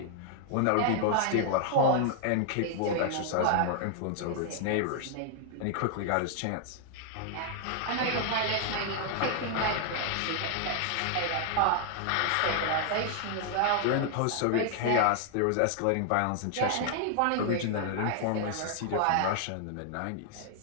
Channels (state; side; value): different; both; correlation 0.00